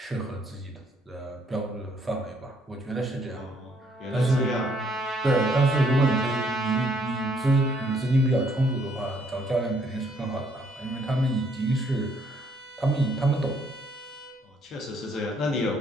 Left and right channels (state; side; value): normal; both; correlation 0.67